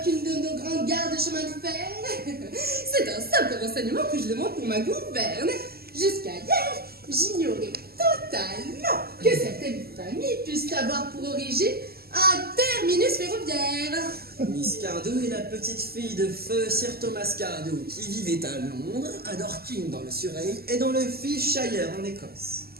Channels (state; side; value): late; left; 0.45 ms